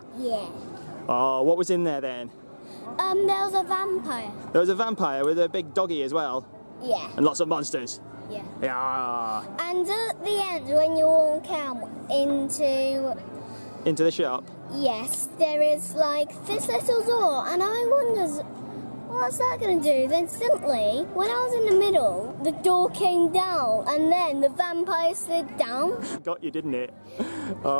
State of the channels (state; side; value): inverted; both; correlation -1.00